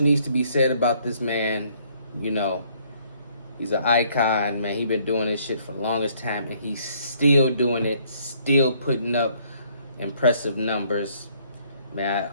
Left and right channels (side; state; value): both; inverted; correlation -0.65